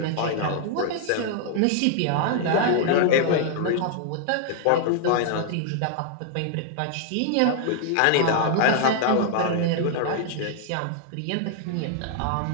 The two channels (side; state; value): both; different; correlation -0.01